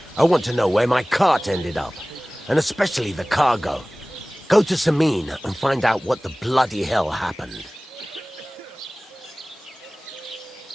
I want to know where my cart ended up, and especially the cargo. Go to Semine and find out what the bloody hell happened.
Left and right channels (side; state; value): both; normal; correlation 0.98